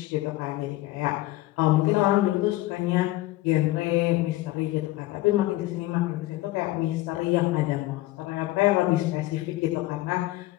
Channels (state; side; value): quieter; right; 17.6 dB